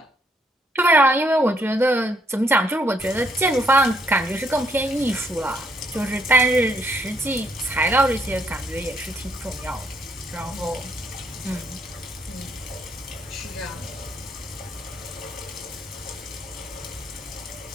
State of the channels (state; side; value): normal; both; correlation 0.71